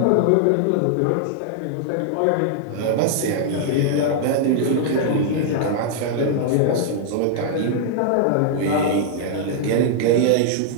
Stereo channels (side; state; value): both; different; correlation -0.01